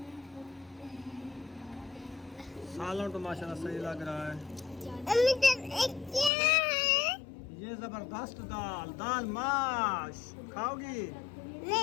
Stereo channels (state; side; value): drops out; right; at 6.3 s